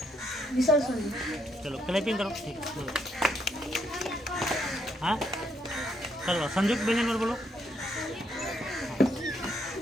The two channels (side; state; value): both; normal; correlation 0.74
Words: विसर्ग संधि। चलो क्लैपिंग करो। ठीक हाँ चलो संयुक्त व्यंजन वर्ण बोलो।